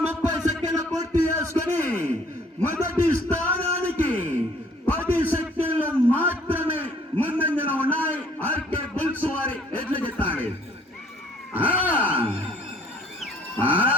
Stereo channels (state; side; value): normal; both; correlation 0.59